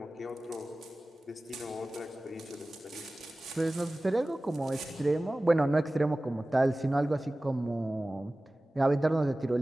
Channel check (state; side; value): normal; both; correlation 0.97